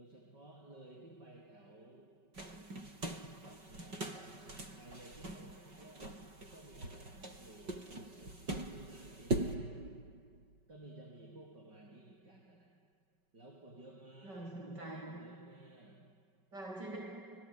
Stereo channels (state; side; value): late; left; 5.3 ms